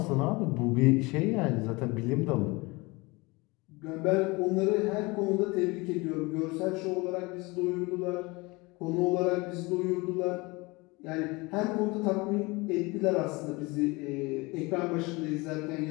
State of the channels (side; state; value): right; quieter; 24.6 dB